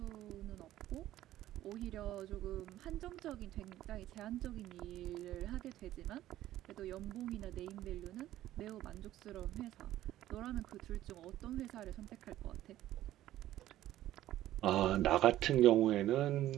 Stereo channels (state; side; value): quieter; left; 13.8 dB